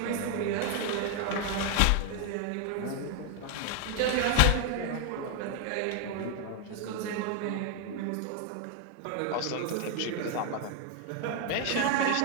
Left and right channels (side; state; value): both; different; correlation 0.00